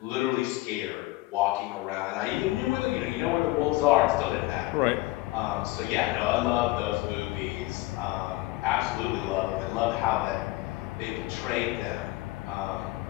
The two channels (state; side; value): quieter; right; 19.5 dB